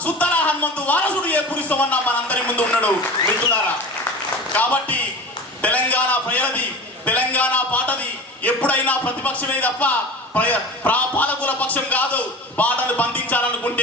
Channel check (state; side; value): normal; both; correlation 0.34